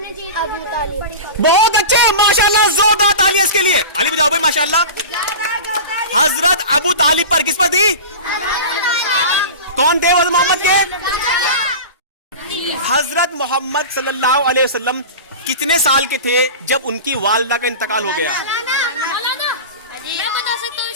अबू तालिब। बहुत अच्छे, माशाल्लाह, जोरदार तालियां इसके लिए, ताली बजाओ भाई माशाल्लाह। हजरत अबू तालिब पर किस पर दी? कौन थे हजरत मोहम्मद के? हजरत मोहम्मद सल्लल्लाहु अलैहि वसल्लम कितने साल के थे जब उनकी वालिदा का इंतकाल हो गया? मौलाना मैं बता सकता हूँ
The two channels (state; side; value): inverted; both; correlation -0.31